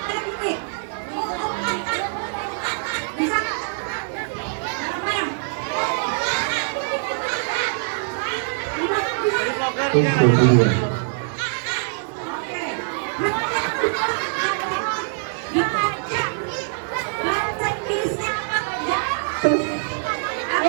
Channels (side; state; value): left; silent; 63 dB below the other